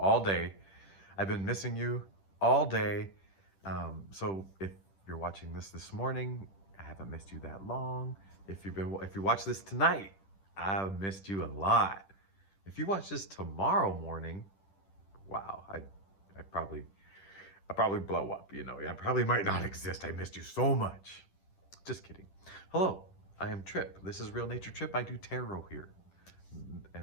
day. I've been missing you all day. So if you're watching this morning, I haven't missed you that long. If you watch this tonight, I've missed you a lot. If you watch this tomorrow morning, wow, I probably blow up. I probably might not exist. I missed you so much. Just kidding. Hello, I am Trip. This is Real Nature Trip. I do tarot here,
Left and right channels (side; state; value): right; late; 10 ms